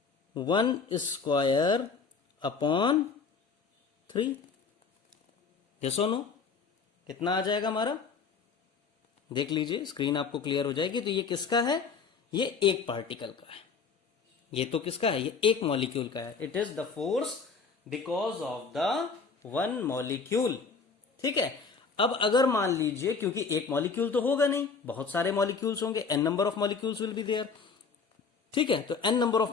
u1 square upon 3। Yes और नो? कितना आ जाएगा हमारा? देख लीजिए, स्क्रीन आपको क्लियर हो जाएगी। तो ये किसका है? ये एक पार्टिकल का है। ये तो किसका है? ये एक मॉलिक्यूल का है। It is the force because of the one molecule. ठीक है, अब अगर मान लीजिए, क्योंकि एक मॉलिक्यूल तो होगा नहीं, बहुत सारे मॉलिक्यूल्स होंगे, n number of molecules will be there. ठीक है, तो n नंबर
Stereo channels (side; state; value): right; quieter; 5.1 dB